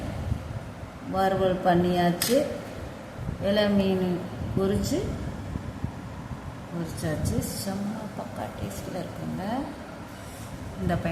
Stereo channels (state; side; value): identical; both; correlation 1.00